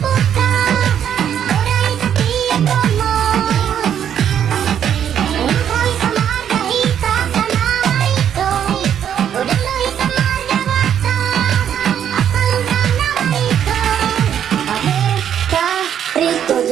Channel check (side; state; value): left; quieter; 9.3 dB